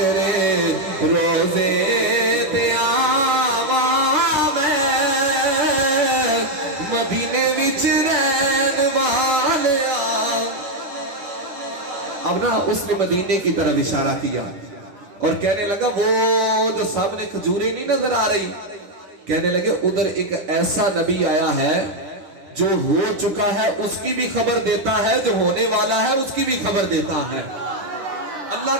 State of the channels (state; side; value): late; left; 9.7 ms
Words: روزے تیاواں میں مدینے وچ رہن والیا. اب نا اس نے مدینے کی طرف اشارہ کیا اور کہنے لگا وہ جو سامنے کھجوریں نہیں نظر آ رہی, کہنے لگے ادھر ایک ایسا نبی آیا ہے جو ہو چکا ہے اس کی بھی خبر دیتا ہے, جو ہونے والا ہے اس کی بھی خبر دیتا ہے. اللہ